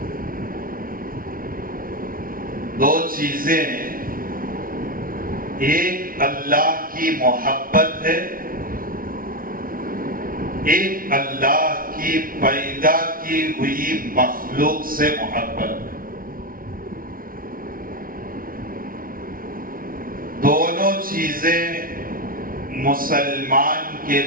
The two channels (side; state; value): left; late; 0.42 ms